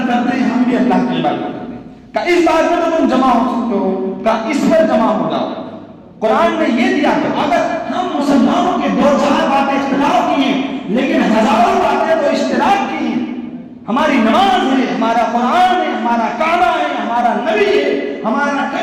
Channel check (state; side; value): identical; both; correlation 1.00